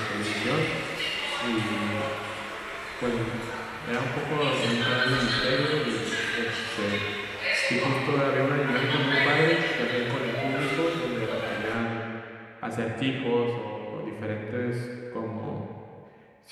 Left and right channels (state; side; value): identical; both; correlation 1.00